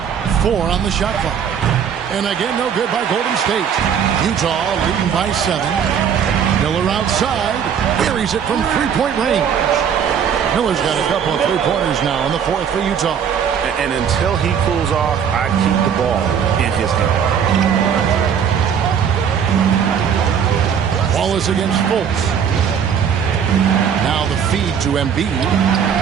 4 on the shot clock. And again, no good by Golden State. Utah leading by 7. Miller outside. Buries it from 3-point range. Miller's got a couple of 3-pointers now in the 4th for Utah. And until he cools off, I keep the ball in his hand. Wallace against Fultz. Now the feed to Embiid.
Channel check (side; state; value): left; quieter; 7.8 dB